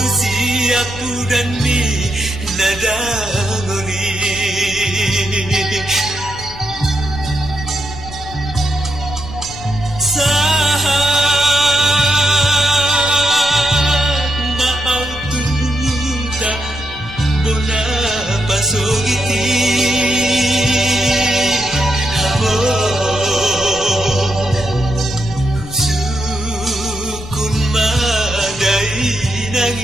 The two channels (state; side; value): noise; left; rumble, 15 dB below the sound